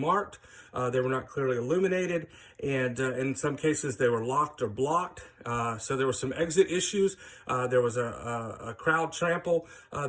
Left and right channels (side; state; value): both; identical; correlation 1.00